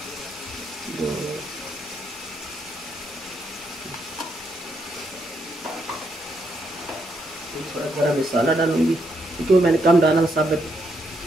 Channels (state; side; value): normal; both; correlation 0.77